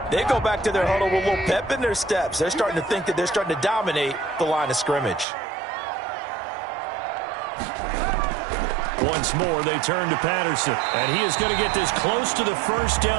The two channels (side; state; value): left; drops out; at 5.2 s